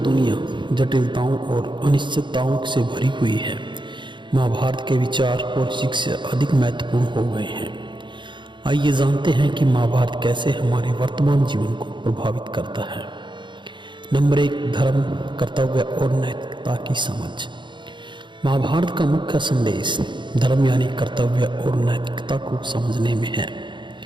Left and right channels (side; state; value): left; late; 0.23 ms